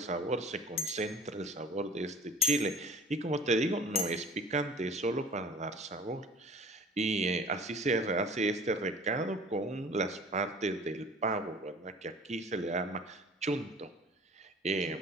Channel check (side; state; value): both; normal; correlation 0.46